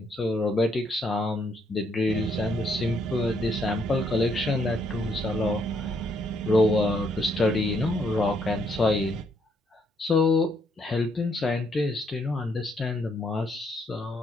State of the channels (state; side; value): normal; both; correlation 0.72